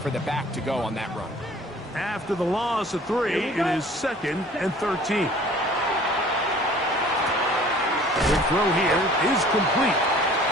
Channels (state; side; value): normal; both; correlation 0.50